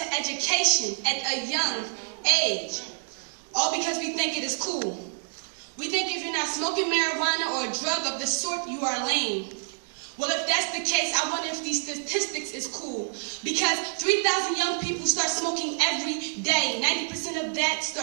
education at a young age, all because we think it is cool. We think if you're not smoking marijuana or a drug of the sort, you are lame. Well, if that's the case, I wonder if these statistics is cool. Because 3,000 young people start smoking every day. 90% of that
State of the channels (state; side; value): silent; left; 60 dB below the other